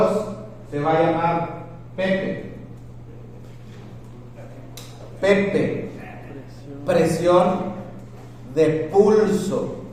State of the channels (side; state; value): both; identical; correlation 1.00